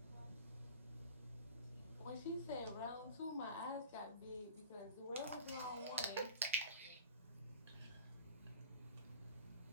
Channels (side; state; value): both; inverted; correlation -0.40